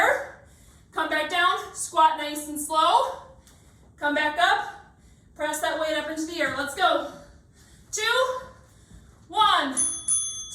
Come back down. Squat nice and slow. Come back up. Press that weight up into the air. Let's go. 2, 1.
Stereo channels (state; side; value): identical; both; correlation 1.00